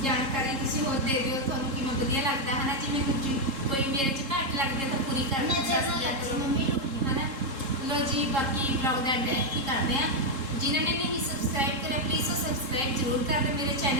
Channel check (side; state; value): left; late; 3.7 ms